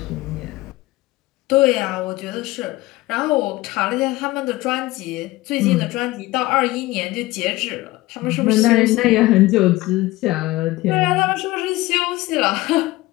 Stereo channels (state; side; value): quieter; right; 19.1 dB